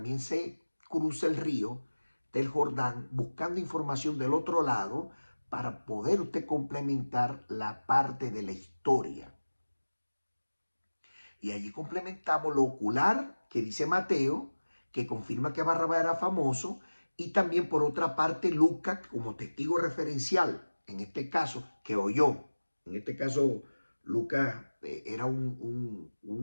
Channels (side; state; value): both; inverted; correlation -1.00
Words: se cruce el río del Jordán buscando información del otro lado para poder usted complementar la parte de la historia. Y allí complementamos lo ocular que dice Mateo, que confirma que Barrabás era famoso, y también por otra parte Lucas como testigo referencial, en este caso, que oyó. En este caso, Lucas era